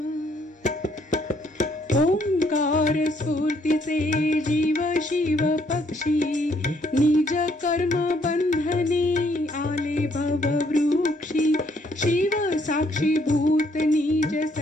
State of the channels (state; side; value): normal; both; correlation 0.68